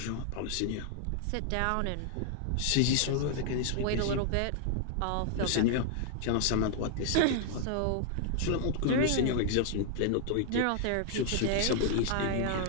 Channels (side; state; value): both; different; correlation 0.00